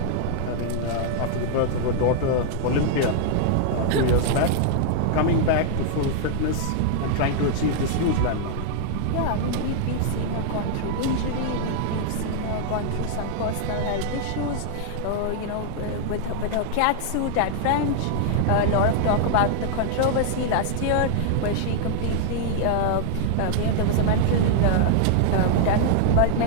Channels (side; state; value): both; different; correlation 0.00